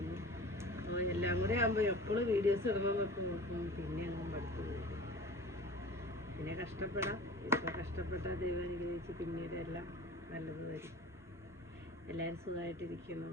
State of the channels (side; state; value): both; normal; correlation 0.38